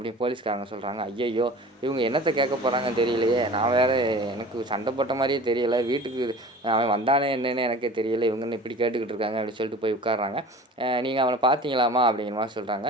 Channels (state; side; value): normal; both; correlation 0.41